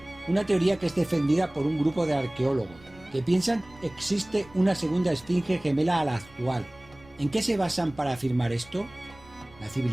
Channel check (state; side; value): noise; right; rumble, 24 dB below the sound